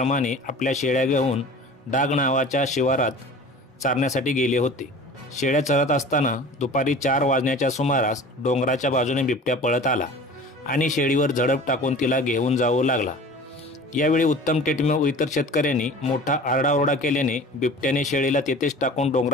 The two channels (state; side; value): normal; both; correlation 0.41